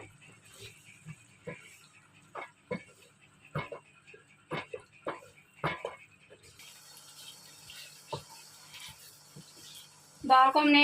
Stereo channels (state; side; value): identical; both; correlation 1.00